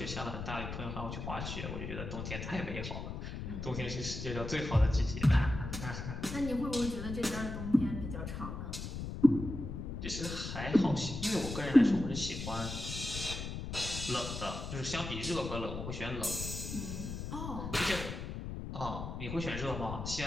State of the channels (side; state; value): left; noise; rumble, 6 dB below the sound